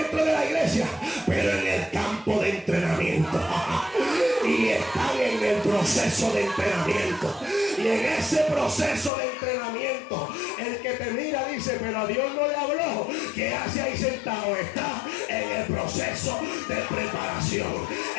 de la iglesia, pero en el campo de entrenamiento. Y están en el proceso de entrenamiento. Y en ese proceso de entrenamiento, el que te mira dice, pero a Dios no le habló. ¿Qué hace ahí sentado? Está en el proceso de preparación.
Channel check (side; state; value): right; drops out; at 9.1 s